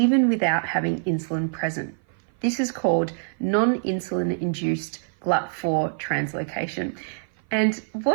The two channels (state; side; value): silent; left; 57 dB below the other